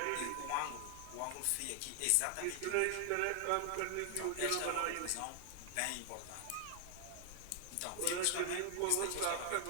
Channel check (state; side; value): different; both; correlation 0.00